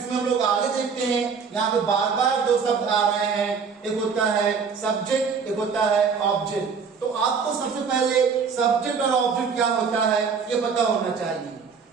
हम लोग आगे देखते हैं, यहाँ पे बार बार दो शब्द आ रहे हैं, एक होता है सब्जेक्ट, एक होता है ऑब्जेक्ट। तो आपको सबसे पहले सब्जेक्ट और ऑब्जेक्ट क्या होता है ये पता होना चाहिए।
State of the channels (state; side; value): quieter; left; 5.8 dB